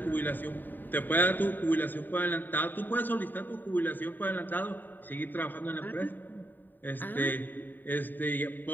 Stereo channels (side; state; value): right; late; 0.091 ms